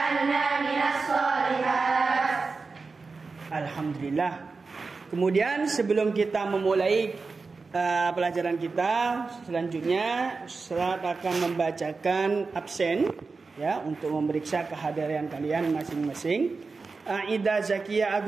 minas sholihat. Alhamdulillah. Kemudian sebelum kita memulai pelajaran kita, selanjutnya Ustaz akan membacakan absen ya, untuk memeriksa kehadiran kalian masing-masing. Aida Zakia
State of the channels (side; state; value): left; quieter; 4.2 dB